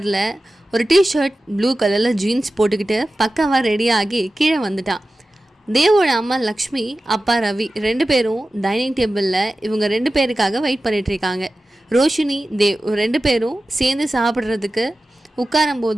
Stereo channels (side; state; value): both; normal; correlation 0.95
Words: ஒரு டிஷர்ட், ப்ளூ கலர்ல ஜீன்ஸ் போட்டுக்கிட்டு பக்காவா ரெடியாகி கீழே வந்துட்டான். தேவோட அம்மா லக்ஷ்மி, அப்பா ரவி 2 பேரும் டைனிங் டேபிளில் இவங்க 2 பேருக்காக வெயிட் பண்ணிட்டு இருக்காங்க. ரோஷினி, தேவ் 2 பேரும் சேர்ந்து சாப்பிட்றதுக்கு